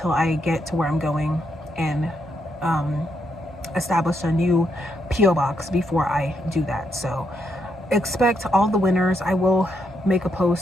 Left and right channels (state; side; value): normal; both; correlation 0.78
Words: I get to where I'm going and establish a new PO box before I do that. So expect all the winners. I will make a